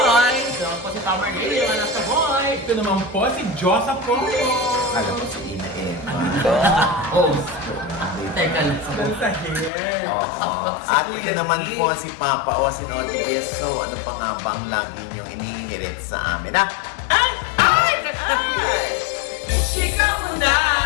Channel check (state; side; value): drops out; right; at 9.7 s